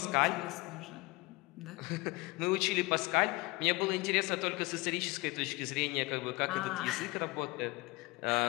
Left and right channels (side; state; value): right; quieter; 23.4 dB